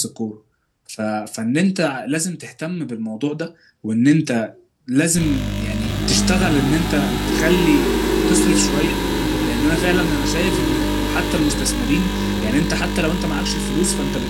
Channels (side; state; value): both; identical; correlation 1.00